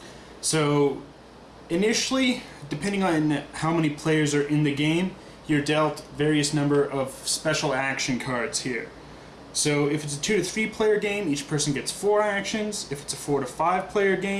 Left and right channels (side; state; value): both; identical; correlation 1.00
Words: So initially, depending on how many players are in the game, you're dealt various number of special action cards here. So if it's a 2 to 3 player game, each person gets 4 actions. If it's a 4 to 5 player